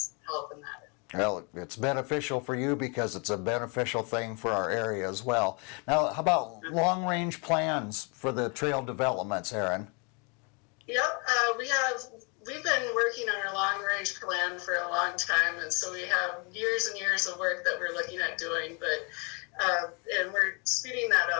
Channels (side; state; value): right; quieter; 33.6 dB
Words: help in that. Well, it's beneficial for you because it's a beneficial thing for our area as well. Now, how about long-range plans for the trail developments, Erin? Yep, we've been working on our long-range plan for a long time, and so we have years and years of work that we're looking at doing, but and we're speeding that